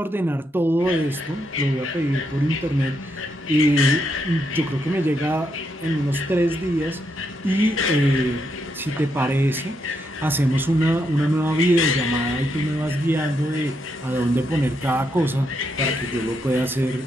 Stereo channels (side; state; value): both; normal; correlation 0.79